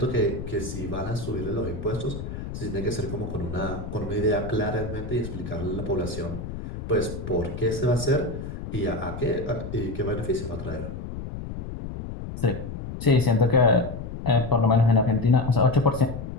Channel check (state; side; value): noise; left; rumble, 8 dB below the sound